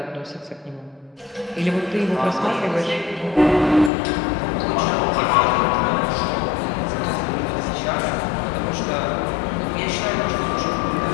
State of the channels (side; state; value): right; drops out; at 3.9 s